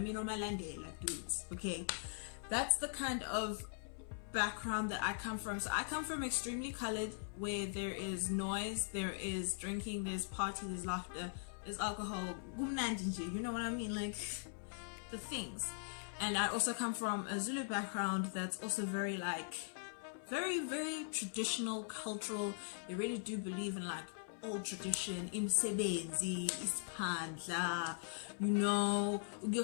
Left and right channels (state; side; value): silent; right; 50 dB below the other